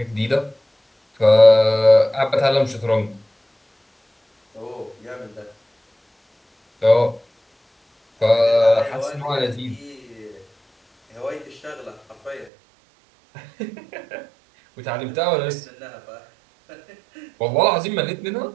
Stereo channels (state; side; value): drops out; left; at 12.5 s